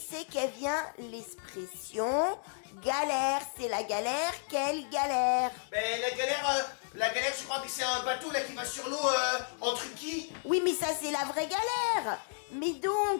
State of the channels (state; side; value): silent; right; digital silence